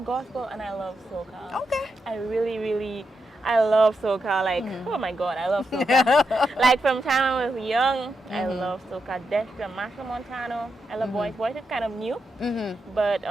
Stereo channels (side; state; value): both; normal; correlation 0.85